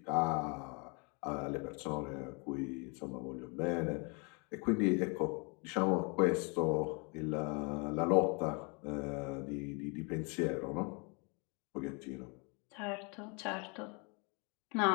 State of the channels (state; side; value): quieter; right; 32.9 dB